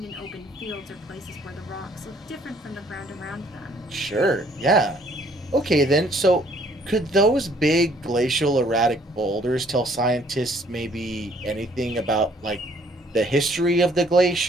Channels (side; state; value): both; normal; correlation 0.61